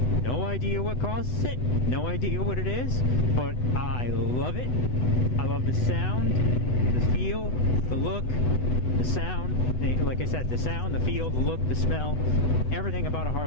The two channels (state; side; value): late; right; 8.0 ms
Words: no idea what causes it, no idea what it is, but I love it. I love the sound, the feel, the look, the sound. Like I said, the sound, the feel, the look, the smell, everything about a